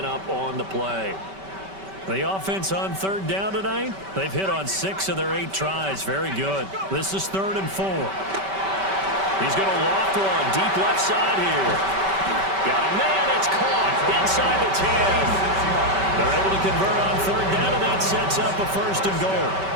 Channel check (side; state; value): left; late; 5.2 ms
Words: up on the play. The offense on 3rd down tonight, they've hit on 6 of their 8 tries. Very good. This is 3rd and 4. He's going to loft one deep left side here. Got a man. It's caught inside the 10. They're able to convert on 3rd down, and that sets up a 1st and goal.